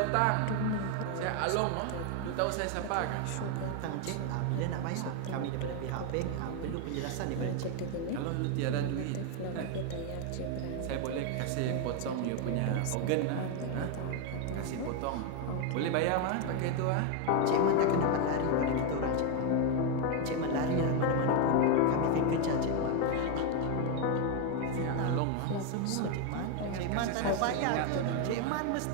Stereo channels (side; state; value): both; different; correlation 0.01